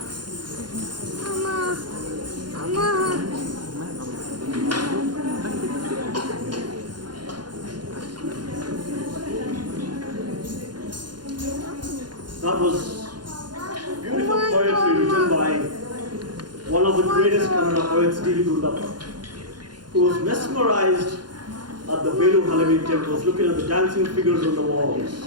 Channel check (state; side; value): late; left; 0.71 ms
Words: Mama. That was beautiful poetry written by one of the greatest Kannada poets, D.V. Gundappa, who was mesmerized at the Velu Halavi temples, looking at the dancing figures on the walls.